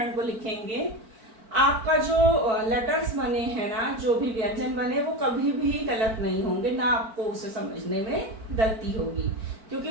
को लिखेंगे, आपका जो लेटर्स बने हैं ना, जो भी व्यंजन बने, वो कभी भी गलत नहीं होंगे, ना आपको उसे समझने में गलती होगी, क्योंकि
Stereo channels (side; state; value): left; late; 4.5 ms